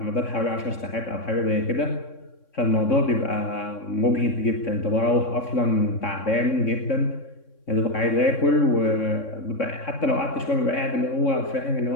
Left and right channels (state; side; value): late; right; 3.6 ms